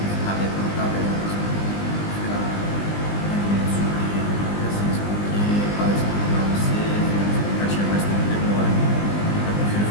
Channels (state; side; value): late; right; 20 ms